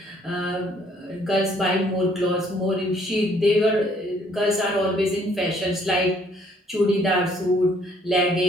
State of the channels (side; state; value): both; normal; correlation 0.63